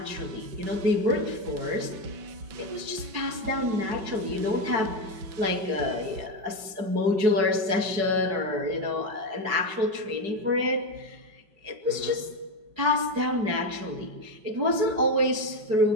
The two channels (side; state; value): left; late; 5.3 ms